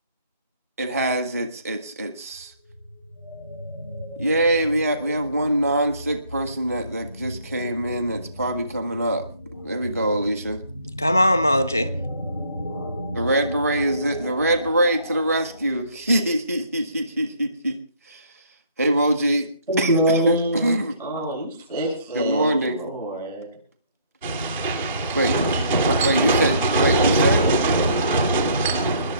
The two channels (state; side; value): inverted; both; correlation -0.62